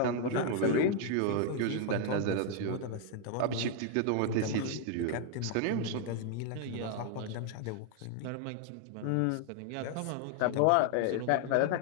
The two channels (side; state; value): both; different; correlation 0.00